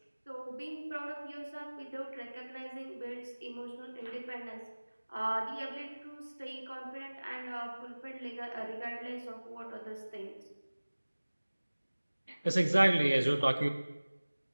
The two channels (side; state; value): both; inverted; correlation -1.00